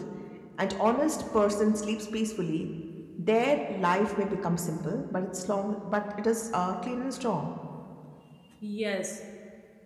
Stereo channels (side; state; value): both; identical; correlation 1.00